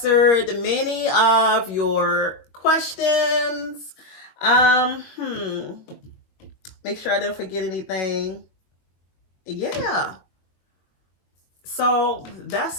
many of your questions. Make sure I didn't forget anything. Yeah. So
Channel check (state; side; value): late; right; 22 ms